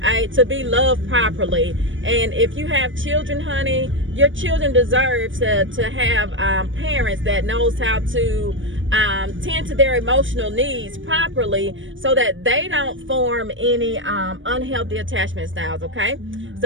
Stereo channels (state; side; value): late; left; 0.56 ms